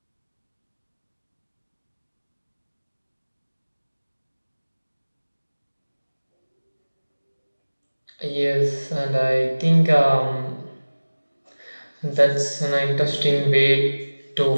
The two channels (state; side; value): inverted; both; correlation -1.00